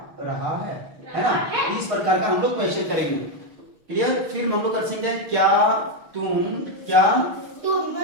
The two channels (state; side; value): late; left; 6.5 ms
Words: रहा है ना? इस प्रकार का हम लोग क्वेश्चन करेंगे। क्लियर? फिर हम लोग कर सकते हैं, क्या तुम